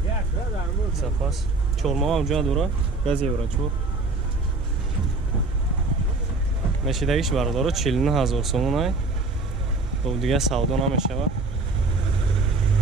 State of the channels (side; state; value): left; quieter; 3.3 dB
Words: Запас. Чорма оунҷа дора, газ еврачур. Мешидагиш бардоро 49000 сомон ай. Бо дига савдо намешава.